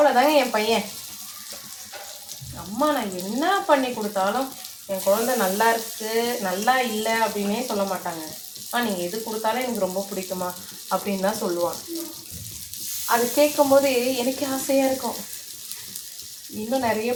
என் பையன். அம்மா அம்மா நான் என்ன பண்ணி கொடுத்தாலும் என் குழந்தை நல்லா இருக்கு நல்லா இல்லை அப்படின்னே சொல்ல மாட்டாங்க. நீங்கள் எது கொடுத்தாலும் எனக்கு ரொம்ப பிடிக்குமா அப்படின்னு தான் சொல்லுவான். அது கேட்கும் போது எனக்கு ஆசையாக இருக்கும், இன்னும் நிறைய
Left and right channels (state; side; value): identical; both; correlation 1.00